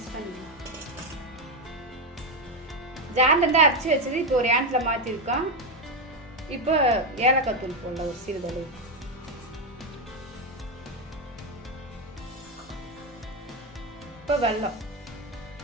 பண்ணிக்கலாம். ஜார்லேருந்து அரைச்சி வச்சது இப்போ ஒரு ஏனத்தில் மாற்றிருக்கோம். இப்போ ஏலக்காய் தூள் போடலாம் ஒரு சிறிதளவு. இப்போ வெல்லம்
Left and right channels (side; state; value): both; normal; correlation 0.08